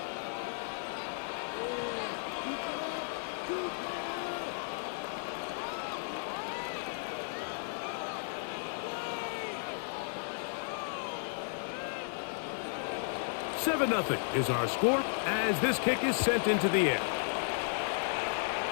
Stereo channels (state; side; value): silent; right; digital silence